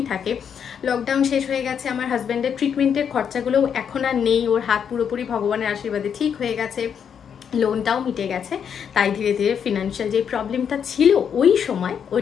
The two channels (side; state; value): right; quieter; 7.7 dB